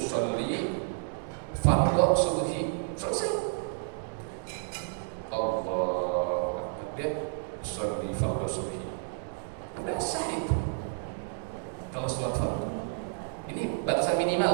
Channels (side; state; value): left; silent; digital silence